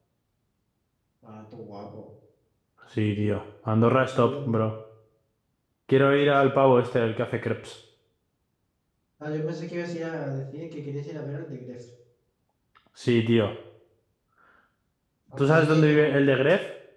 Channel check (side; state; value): both; identical; correlation 1.00